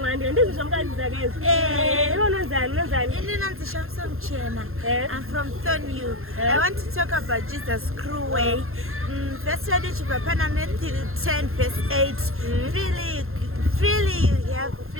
I'm from Thornhill. I want to talk about Jesus' cruel way. Verse 10 verse 8. Freely you have,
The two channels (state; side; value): late; left; 0.61 ms